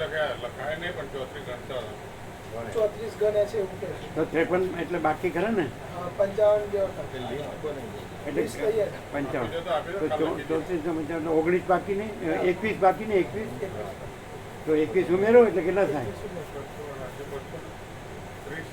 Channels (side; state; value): both; identical; correlation 1.00